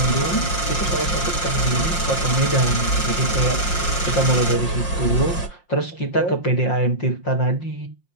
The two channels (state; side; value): late; right; 5.7 ms